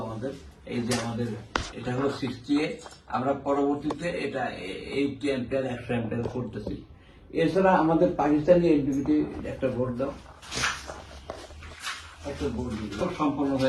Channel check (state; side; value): identical; both; correlation 1.00